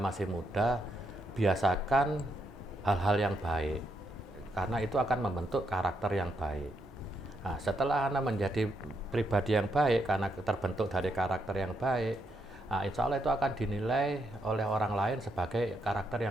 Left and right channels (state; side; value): normal; both; correlation 0.79